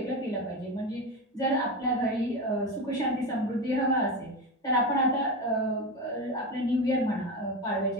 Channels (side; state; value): both; normal; correlation 0.20